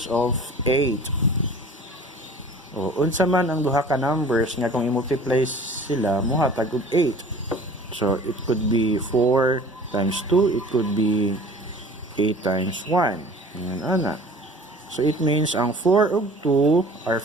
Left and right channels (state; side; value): normal; both; correlation 0.45